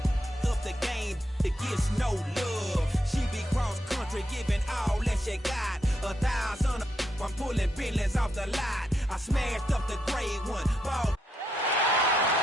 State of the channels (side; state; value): both; normal; correlation 0.81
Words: Up the game, it gets no love. She be cross country, giving all that she got. 1,000, I'm pulling billions off the lot. I smashed up the gray one. Ball.